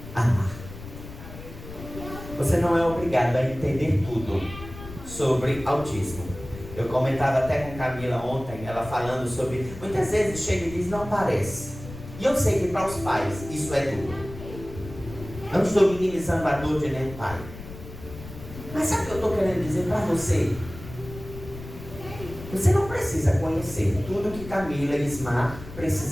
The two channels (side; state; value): left; noise; rumble, 13 dB below the sound